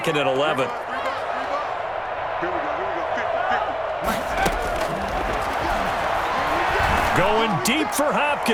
and 11. Going deep for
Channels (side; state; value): both; identical; correlation 1.00